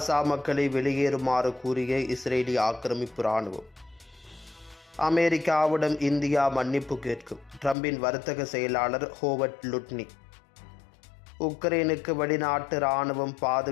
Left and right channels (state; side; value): drops out; right; at 7.8 s